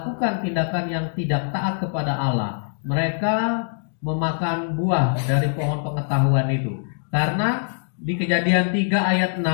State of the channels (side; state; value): right; silent; digital silence